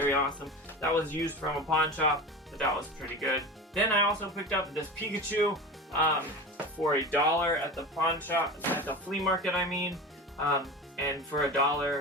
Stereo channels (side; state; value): both; normal; correlation 0.29